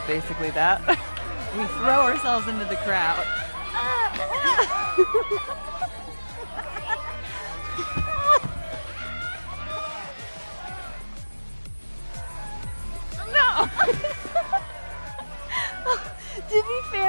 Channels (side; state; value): both; inverted; correlation -1.00